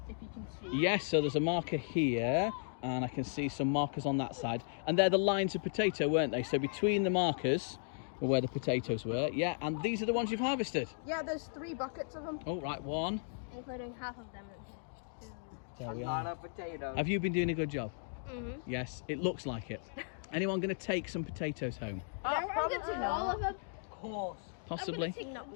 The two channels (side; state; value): right; silent; digital silence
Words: if you can see. Yes, so there's a marker here, and I can see some markers on that side. And they're the lines of potato, weren't they? So between the markers were where the potatoes were. Yeah, and these are the ones you've harvested. Yeah, there's 3 buckets of them. Oh, right, one. Including half of them. There we A lot are. of potatoes. Have you been doing a good job? Mhm. Yes, it looks like it. Anyone going to take some potatoes home? I'm going to all of them. Of course. Possibly. Not